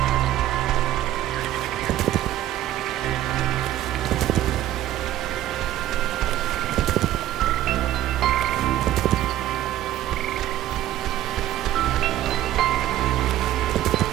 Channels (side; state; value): left; quieter; 13.3 dB